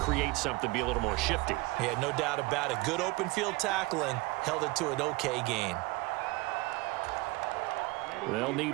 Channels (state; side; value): quieter; left; 22.5 dB